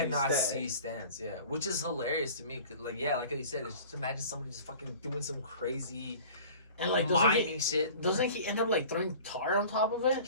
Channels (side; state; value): both; inverted; correlation -0.43